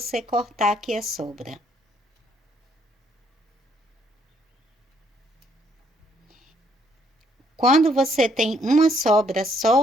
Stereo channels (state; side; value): normal; both; correlation 0.69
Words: cortar aqui a sobra. Quando você tem uma sobra